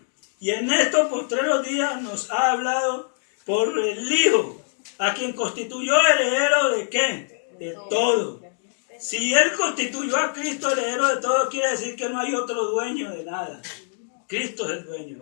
y en estos postreros días nos ha hablado por el Hijo, a quien constituyó heredero de ¿qué? De todo. Si Él constituyó a Cristo heredero de todo, quiere decir que no hay otro dueño de nada. Cristo es el dueño,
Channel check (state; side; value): silent; right; digital silence